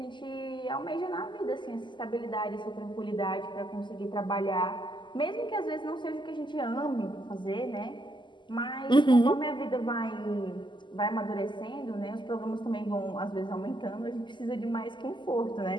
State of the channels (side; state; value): right; late; 0.22 ms